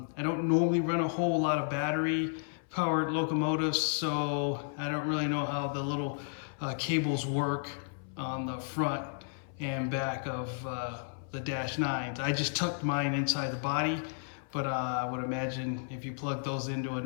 don't normally run a whole lot of battery powered locomotives, so I don't really know how the little cables work on the front and back of the Dash 9s. I just tucked mine inside the body, but I would imagine if you plug those into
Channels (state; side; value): silent; right; 56 dB below the other